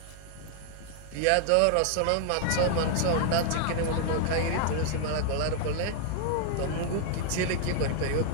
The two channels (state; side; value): different; both; correlation -0.01